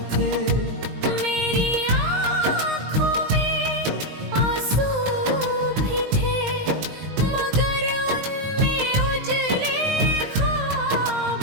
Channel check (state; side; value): late; left; 19 ms